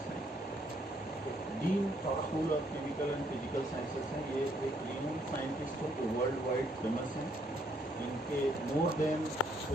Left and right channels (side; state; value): both; normal; correlation 0.70